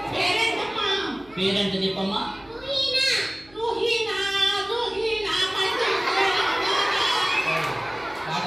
పేరేంటమ్మా? పేరెంట్ చెప్పమ్మా.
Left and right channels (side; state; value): right; noise; hum, 27 dB below the sound